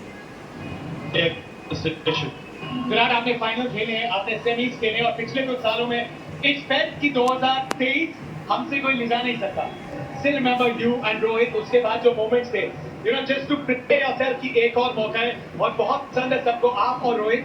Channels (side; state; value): both; identical; correlation 1.00